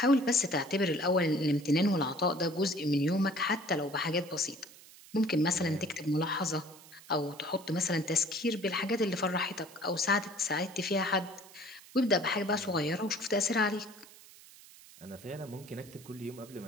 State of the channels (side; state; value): right; noise; hiss, 21 dB below the sound